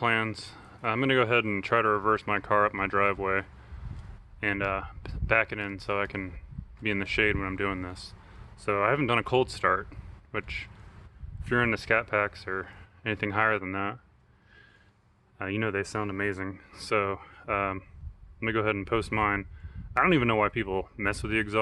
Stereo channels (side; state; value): both; identical; correlation 1.00